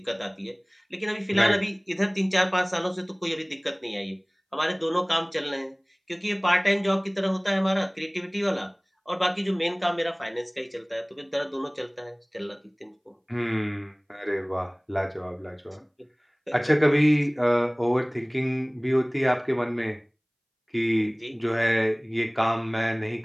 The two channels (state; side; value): identical; both; correlation 1.00